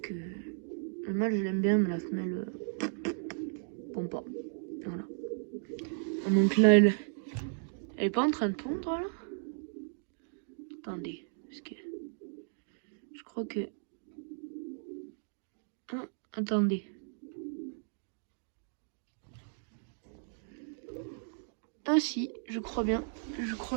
le mâle je l'aime bien, mais la femelle pond pas. Voilà. Donc là elle est pas en train de pondre là. Attendez, parce que je crois que. Ah, attendez. Ah si, je crois bien. Je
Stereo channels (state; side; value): silent; left; digital silence